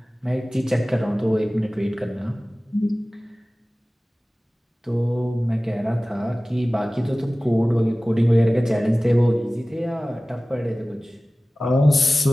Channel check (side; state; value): both; normal; correlation 0.97